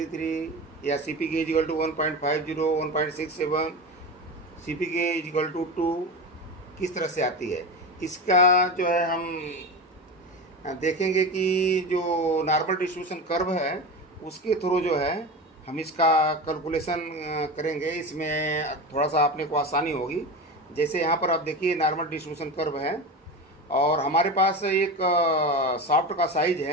या CPK equal to 1.50, 1.67, CPK equal to 2 किस तरह से आती है, इसका जो है हम देखेंगे कि जो नॉर्मल डिस्ट्रीब्यूशन कर्व है उसके थ्रू जो है हम इसका कैलकुलेशन करेंगे। इसमें थोड़ा सा आपने को आसानी होगी। जैसे यहाँ पर आप देखिए नॉर्मल डिस्ट्रीब्यूशन कर्व है और हमारे पास एक सॉफ्ट का साइज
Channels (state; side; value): normal; both; correlation 0.24